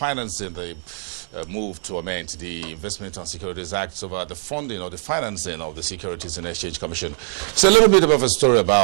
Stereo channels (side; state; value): left; silent; digital silence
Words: the move to amend the Investment and Securities Act over the funding or the financing of the Securities and Exchange Commission. It's a little bit of a story